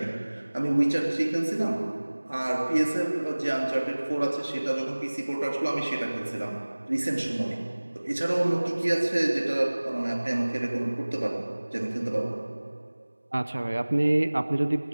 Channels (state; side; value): inverted; both; correlation -1.00